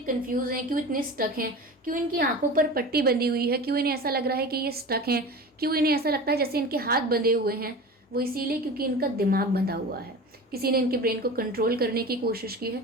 हैं, क्यों इतने स्टक हैं, क्यों इनकी आंखों पर पट्टी बंधी हुई है, क्यों इन्हें ऐसा लग रहा है कि ये स्टक हैं, क्यों इन्हें ऐसा लगता है जैसे इनके हाथ बंधे हुए हैं, वो इसीलिए क्योंकि इनका दिमाग बंधा हुआ है। किसी ने इनके ब्रेन को कंट्रोल करने की कोशिश की है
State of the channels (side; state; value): both; normal; correlation 0.33